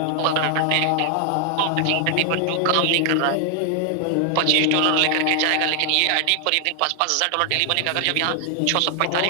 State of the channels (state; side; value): different; both; correlation 0.00